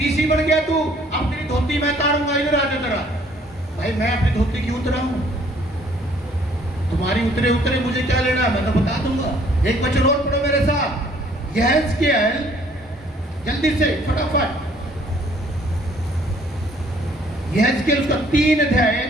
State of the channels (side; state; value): both; normal; correlation 0.60